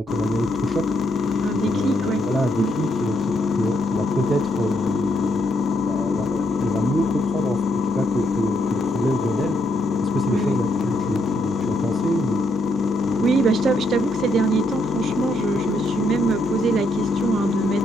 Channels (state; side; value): normal; both; correlation 0.76